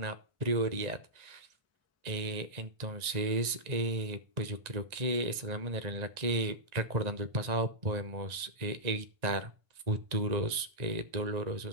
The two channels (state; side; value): late; left; 1.9 ms